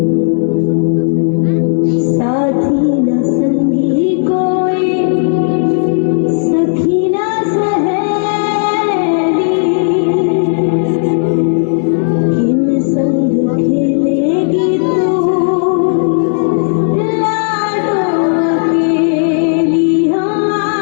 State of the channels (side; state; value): right; silent; digital silence